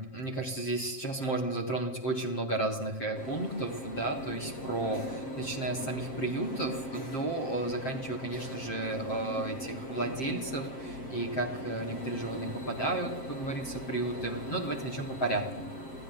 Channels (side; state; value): right; late; 7.6 ms